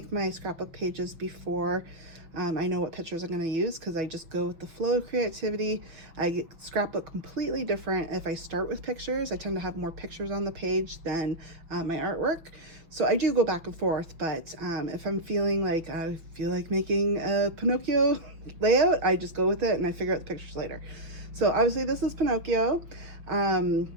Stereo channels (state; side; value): late; left; 6.4 ms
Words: my scrapbook pages before I know what pictures I'm going to use, because I just go with the flow of creativity. I scrapbook completely different if I start with pictures. I tend to have more pictures on the page than my artwork. So I do go back and forth, but if I'm feeling like I feel like making a Pinocchio layout, I just go with it and I figure out the pictures later. So obviously this is Pinocchio.